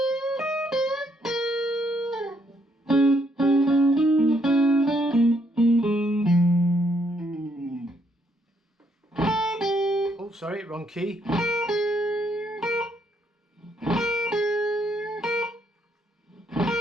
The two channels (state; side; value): normal; both; correlation 0.73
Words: Oh, sorry, wrong key.